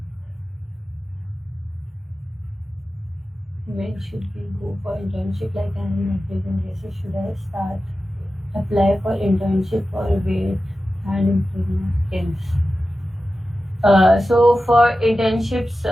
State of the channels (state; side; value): normal; both; correlation 0.93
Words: When should we go for internship? Like I'm in applicant basis, should I start apply for internship or wait and improve my skills? So for internships,